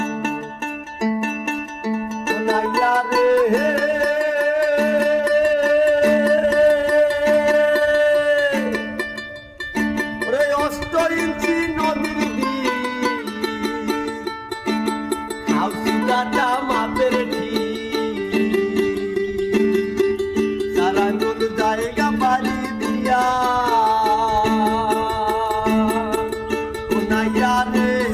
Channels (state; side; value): identical; both; correlation 1.00